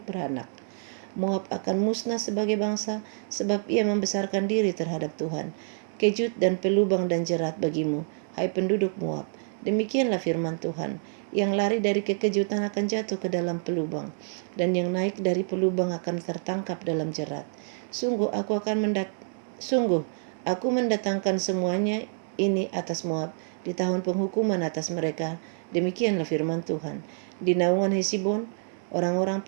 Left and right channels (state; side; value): silent; left; digital silence